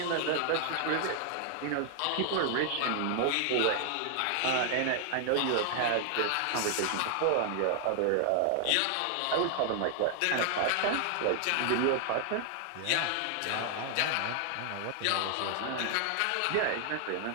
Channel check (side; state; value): both; different; correlation 0.00